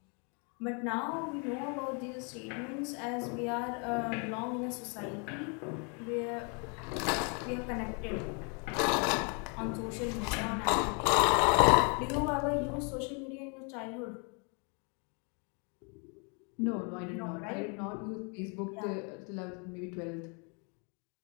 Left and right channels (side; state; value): right; quieter; 36.1 dB